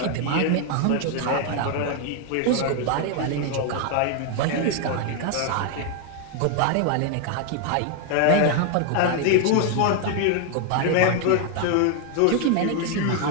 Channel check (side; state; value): both; different; correlation 0.01